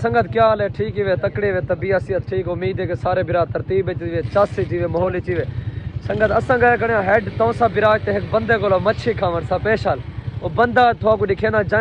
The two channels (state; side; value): identical; both; correlation 1.00